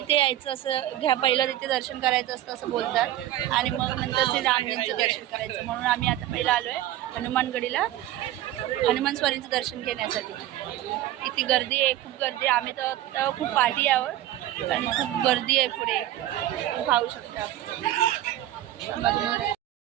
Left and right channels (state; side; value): quieter; left; 13.8 dB